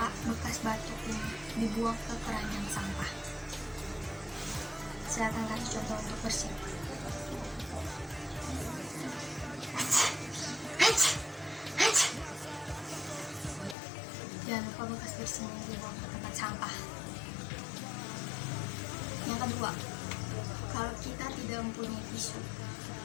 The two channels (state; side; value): drops out; right; at 13.8 s